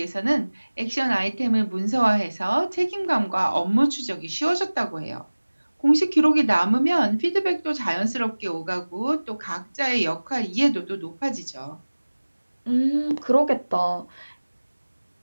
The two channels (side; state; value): both; inverted; correlation -1.00